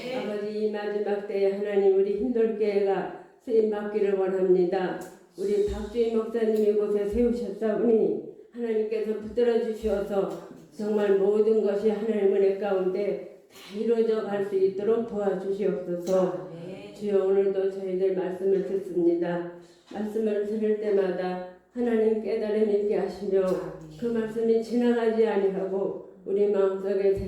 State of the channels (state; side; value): identical; both; correlation 1.00